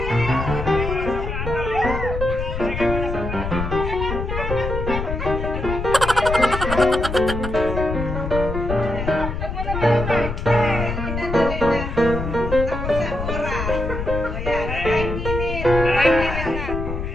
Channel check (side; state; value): left; noise; rumble, 4 dB below the sound